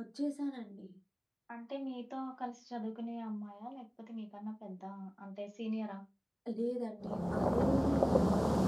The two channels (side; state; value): both; identical; correlation 1.00